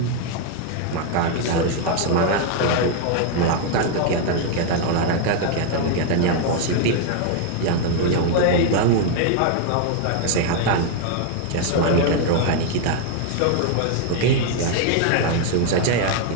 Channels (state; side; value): different; both; correlation 0.01